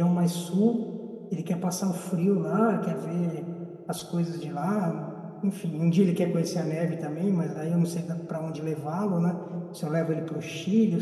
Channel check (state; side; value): identical; both; correlation 1.00